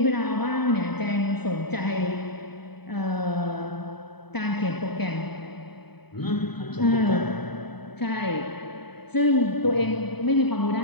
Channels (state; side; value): late; right; 0.98 ms